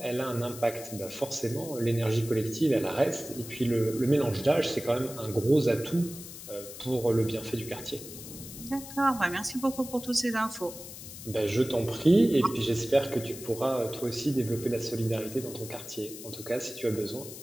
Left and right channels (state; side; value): noise; left; hiss, 13 dB below the sound